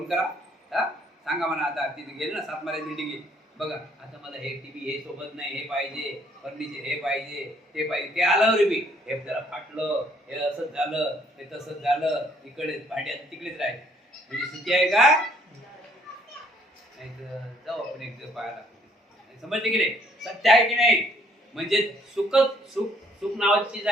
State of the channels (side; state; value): both; normal; correlation 0.64